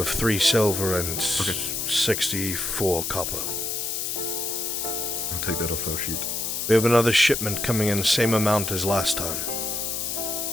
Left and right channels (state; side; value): noise; left; hiss, 2 dB below the sound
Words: 3 silver and 64 copper. I'll take that off our sheet. We have another shipment coming in, same amount as last time.